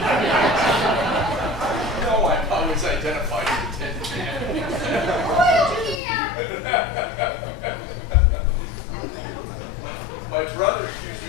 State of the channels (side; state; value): right; drops out; at 6.0 s